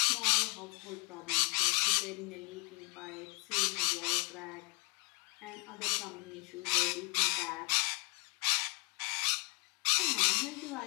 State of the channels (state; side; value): quieter; right; 31.7 dB